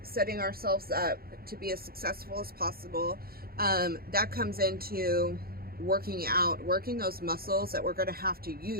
setting ourselves up to be as successful as possible. That comes into working those muscles that we're going to have to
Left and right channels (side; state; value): left; late; 0.44 ms